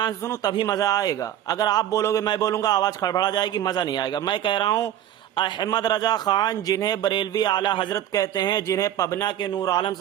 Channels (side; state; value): left; quieter; 11.4 dB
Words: سے سنوں تبھی مزہ آئے گا. اگر آپ بولو گے میں بولوں گا آواز کھڑبڑا جائے گی، مزہ نہیں آئے گا. میں کہہ رہا ہوں احمد رضا خان جنہیں بریلوی اعلیٰ حضرت کہتے ہیں، جنہیں پبنا کے نور عالم